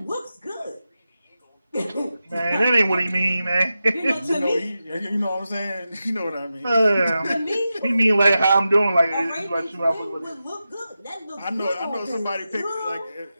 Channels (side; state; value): both; inverted; correlation -0.92